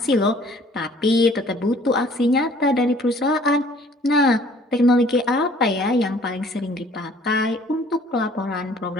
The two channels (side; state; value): both; normal; correlation 0.56